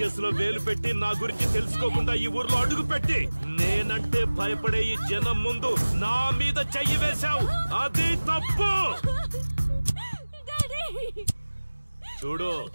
వేలు పెట్టి నా గురించి తెలుసుకోకుండా ఈ ఊర్లో అడుగు పెట్టి నేనంటే భయపడే ఈ జనం ముందు నా మీద చెయ్యి వేశావు, అది తప్పు. చూడు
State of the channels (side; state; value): both; inverted; correlation -1.00